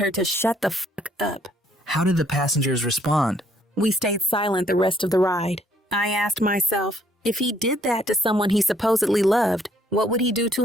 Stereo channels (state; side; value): normal; both; correlation 0.66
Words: to shut the fuck up. How did the passengers respond? We stayed silent the rest of the ride. I asked myself, if he did that to someone he supposedly loved, what would he do